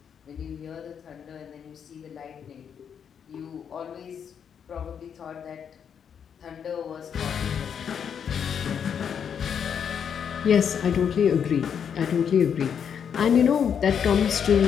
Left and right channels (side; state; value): right; quieter; 7.7 dB